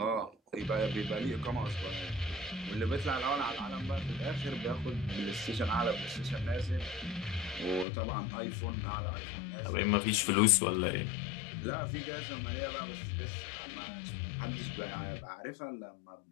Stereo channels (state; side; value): drops out; right; at 7.9 s